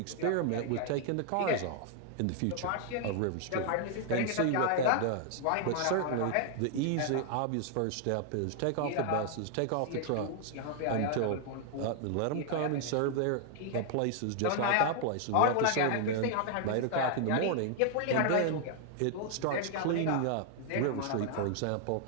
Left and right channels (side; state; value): both; different; correlation 0.00